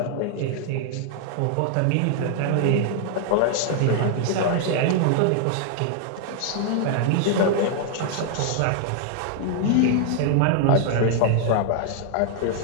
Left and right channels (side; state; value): both; different; correlation 0.00